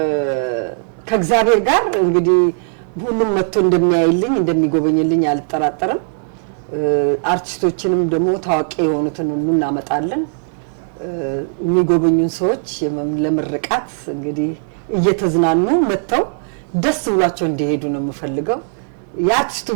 ከእግዚአብሔር ጋር እንግዲህ ሁሉም መጥቶ እንደሚያይልኝ እንደሚጎበኝልኝ አልጠራጠርም። አርቲስቶችንም ደግሞ ታዋቂ የሆኑትን ሁሉ እናመጣለን። የሚጎበኙን ሰዎች ለምርቃት እንግዲህ እየተዝናኑ መጥተው ደስ ብሏቸው እንዲሄዱ ነው የምፈልገው። የአርቲስቱ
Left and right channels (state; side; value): silent; left; digital silence